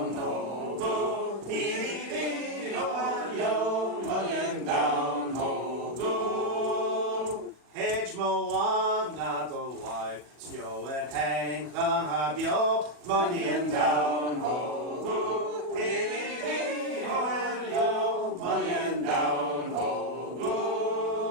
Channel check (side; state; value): left; late; 40 ms